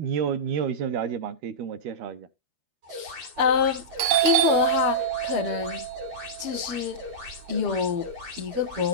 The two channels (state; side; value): late; left; 12 ms